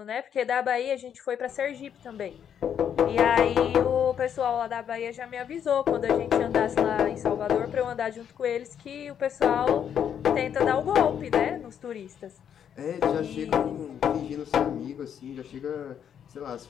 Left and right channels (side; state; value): right; quieter; 8.7 dB